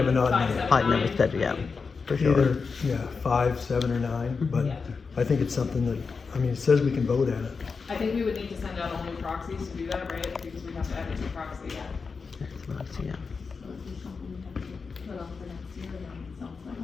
an odd five, number. seven, Odd number nine, said, yeah. For sure. Either, 5, 7, or 9, but Yeah. I think it's something that, I mean, it says we can vote at it. I think we would need to send out all new proxies to do that, right? Because we have to add a new proxy. Next month, yeah. Put off for next year, then, it sounds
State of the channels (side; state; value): right; quieter; 5.0 dB